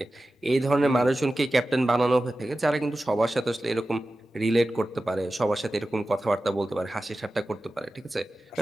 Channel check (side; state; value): both; normal; correlation 0.94